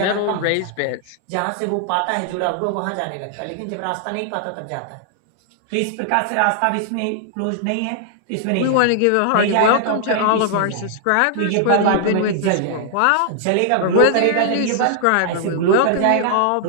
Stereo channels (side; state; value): both; different; correlation 0.00